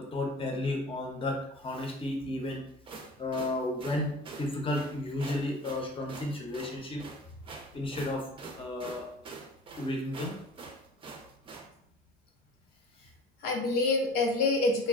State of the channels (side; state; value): both; normal; correlation 0.41